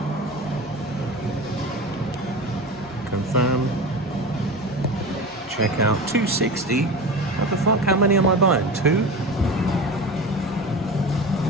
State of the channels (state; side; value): normal; both; correlation 0.30